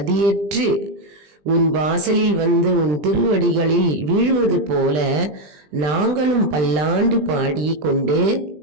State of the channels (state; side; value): late; left; 20 ms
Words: உன் வாசலில் வந்து உன் திருவடிகளில் வீழ்வது போல நாங்களும் பல்லாண்டு பாடி கொண்டு